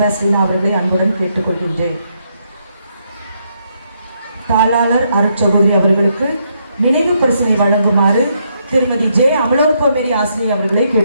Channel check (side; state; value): both; inverted; correlation -0.76